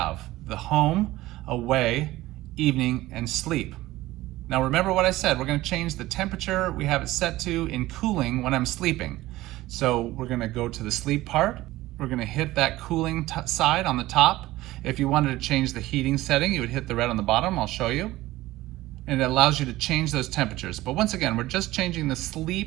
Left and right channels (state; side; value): quieter; left; 17.2 dB